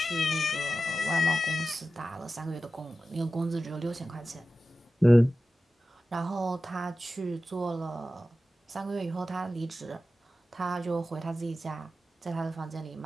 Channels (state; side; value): normal; both; correlation 0.93